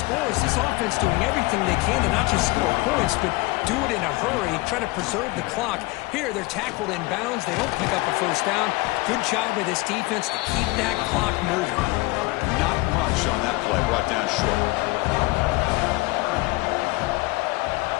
This offense doing everything they can to not just score points, but do it in a hurry, try to preserve the clock. Here, they're tackled in bounds. They don't pick up a 1st down. Good job by this defense to keep that clock moving. Not much on that play, brought down short.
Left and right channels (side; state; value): right; quieter; 22.4 dB